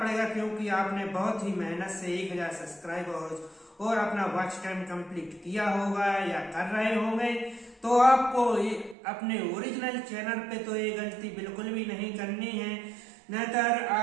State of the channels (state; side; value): drops out; left; at 9.0 s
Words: क्योंकि आपने बहुत ही मेहनत से 1000 सब्सक्राइबर और अपना वॉच टाइम कंप्लीट किया होगा या कर रहे होंगे। तो आपको अपने ओरिजिनल चैनल पे तो ये गलती बिल्कुल भी नहीं करनी है, नहींतर